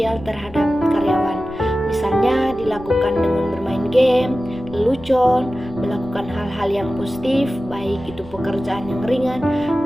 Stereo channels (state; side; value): noise; left; rumble, 19 dB below the sound